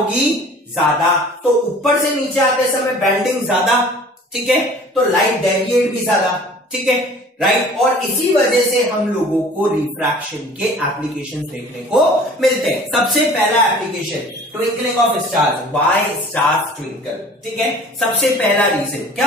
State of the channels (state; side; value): normal; both; correlation 0.47